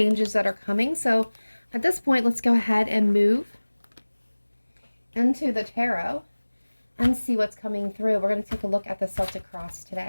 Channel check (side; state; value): both; inverted; correlation -1.00